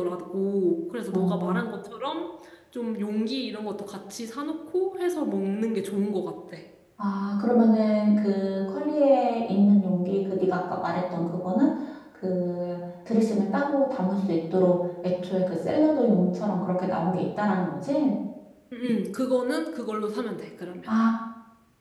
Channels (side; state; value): both; identical; correlation 1.00